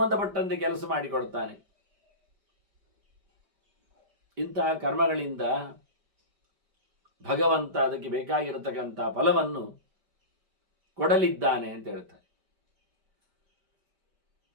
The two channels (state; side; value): late; left; 5.0 ms